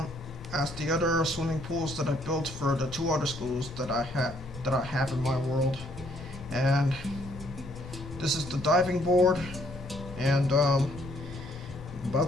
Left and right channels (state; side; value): normal; both; correlation 0.67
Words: swimming pools that I built for the 2 other schools that I have in my world. And this is the diving board, and I'm